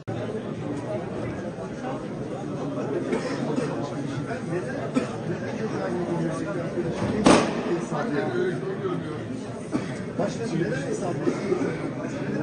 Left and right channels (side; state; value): both; identical; correlation 1.00